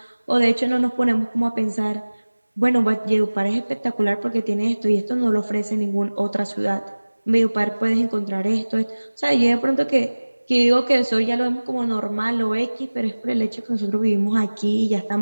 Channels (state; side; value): inverted; both; correlation -1.00